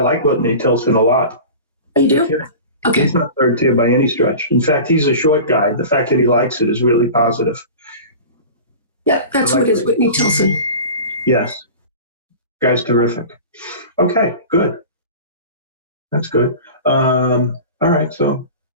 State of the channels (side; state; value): both; inverted; correlation -0.35